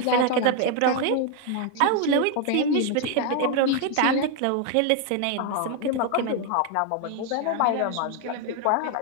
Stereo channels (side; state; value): both; different; correlation 0.01